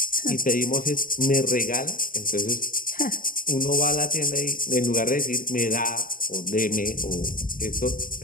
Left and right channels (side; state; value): right; late; 0.40 ms